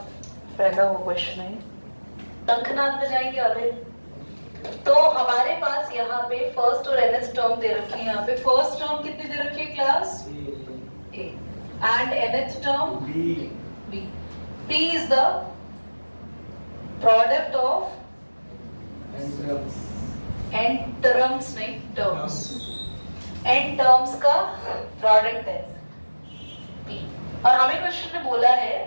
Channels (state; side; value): inverted; both; correlation -1.00